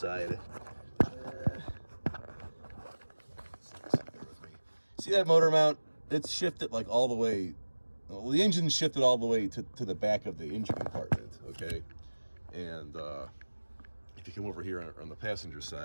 See that motor mount? It's shifted like all the way. Well, the engine's shifted all the way to the back of the engine compartment. Okay. And if you come over here on the passenger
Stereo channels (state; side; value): inverted; both; correlation -1.00